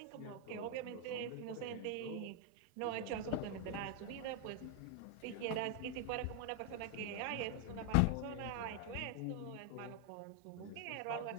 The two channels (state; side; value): different; both; correlation 0.00